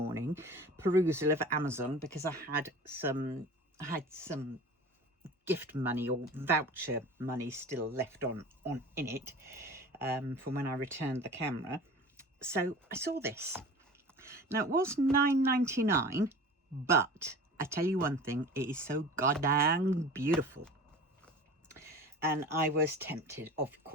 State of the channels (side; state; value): both; normal; correlation 0.38